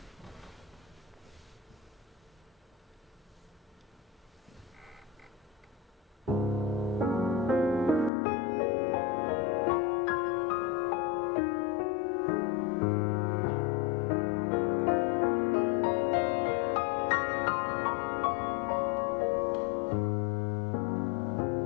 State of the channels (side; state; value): right; drops out; at 8.1 s